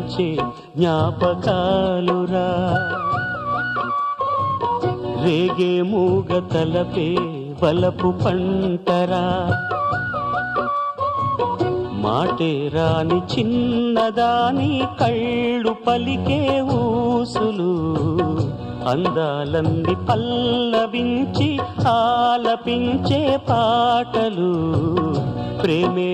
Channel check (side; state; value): both; identical; correlation 1.00